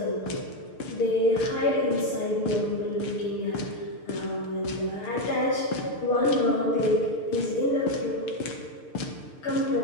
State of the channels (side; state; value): right; late; 6.7 ms